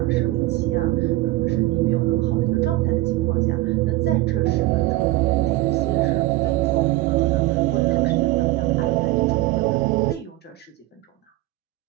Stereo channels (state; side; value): quieter; left; 17.7 dB